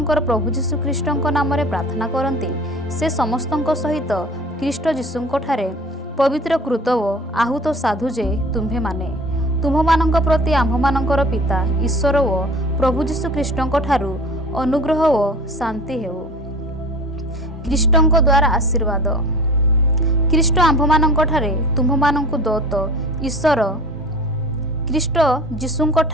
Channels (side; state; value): both; normal; correlation 0.41